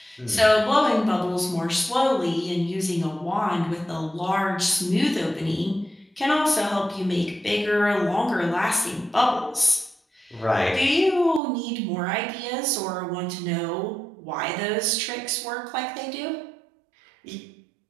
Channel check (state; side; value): drops out; left; at 11.4 s